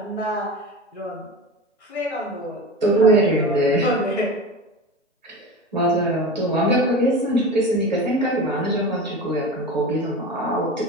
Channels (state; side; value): normal; both; correlation 0.29